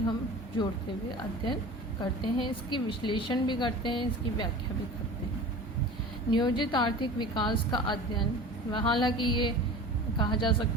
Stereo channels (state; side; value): normal; both; correlation 0.37